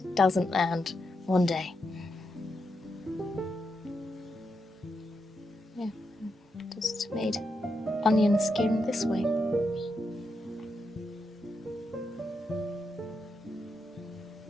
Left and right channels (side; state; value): both; normal; correlation 0.84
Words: doesn't land. One day. Yeah, just made onion skin this way.